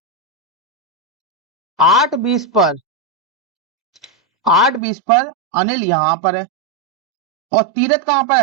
8:20 पर, 8:20 पर अनिल यहां पर है, और तीरथ कहां पर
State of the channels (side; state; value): left; drops out; at 4.8 s